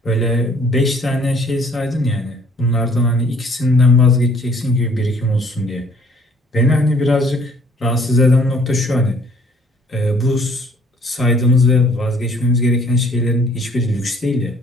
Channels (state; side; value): normal; both; correlation 0.59